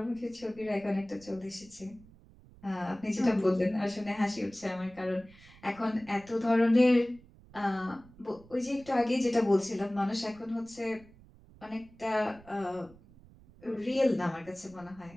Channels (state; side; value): noise; right; rumble, 24 dB below the sound